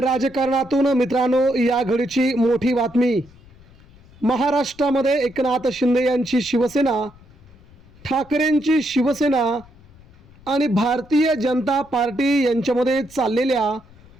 राजकारणातून मित्रांनो या घडीची मोठी बातमी। महाराष्ट्रामध्ये एकनाथ शिंदे यांची शिवसेना, ठाकरेंची शिवसेना आणि भारतीय जनता पार्टी यांच्यामध्ये चाललेल्या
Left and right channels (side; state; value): left; noise; rumble, 25 dB below the sound